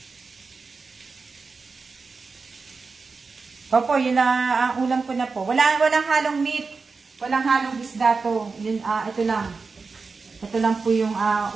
Opo, yun na ang ulam ko na po. Walang halong meat. Walang halong isda to. Yun, ito lang. Ito lang po yung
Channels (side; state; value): left; quieter; 4.5 dB